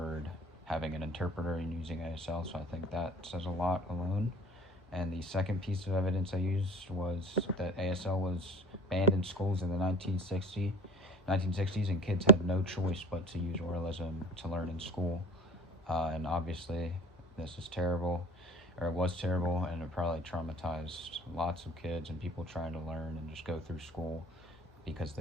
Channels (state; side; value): normal; both; correlation 0.43